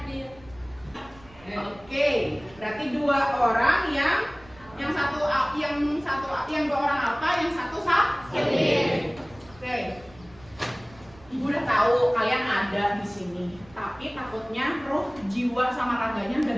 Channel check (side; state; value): right; noise; rumble, 24 dB below the sound